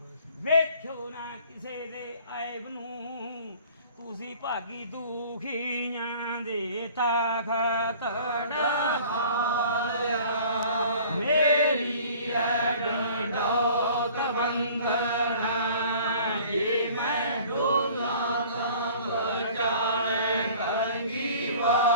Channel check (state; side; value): inverted; both; correlation -0.49